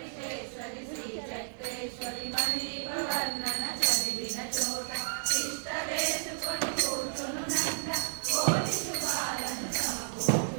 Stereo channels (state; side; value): silent; left; 56 dB below the other